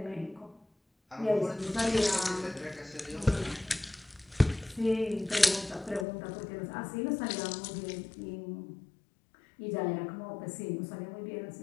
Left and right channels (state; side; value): drops out; right; at 6.1 s